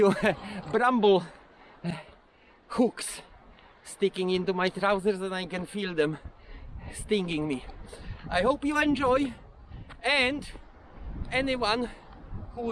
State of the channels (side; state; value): both; identical; correlation 1.00